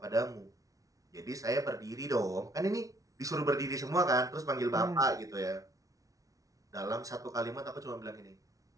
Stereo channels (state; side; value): late; left; 0.17 ms